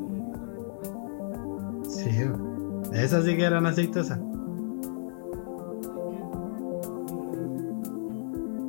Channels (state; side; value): silent; right; digital silence